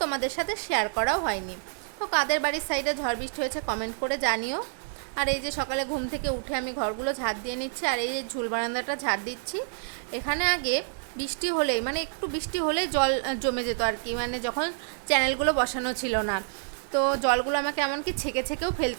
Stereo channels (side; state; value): left; silent; digital silence